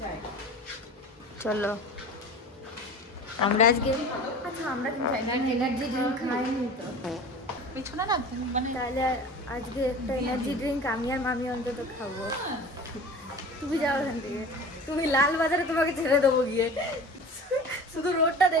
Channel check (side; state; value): both; normal; correlation 0.38